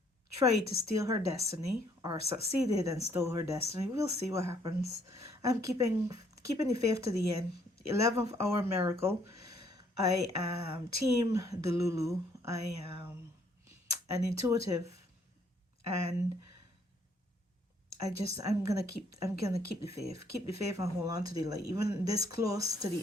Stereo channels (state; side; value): normal; both; correlation 0.66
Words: tried to steal her destiny, or succeeded and stole her destiny. We'll see what happens. I'm keeping the faith to the end. 11th hour miracle. I am team Delulu. I am an intuitive, and I'm gonna keep the faith. Keep the faith and hold on to the light. Even this close to